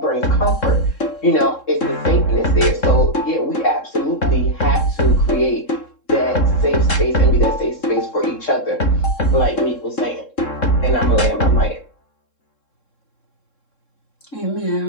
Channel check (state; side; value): late; right; 3.7 ms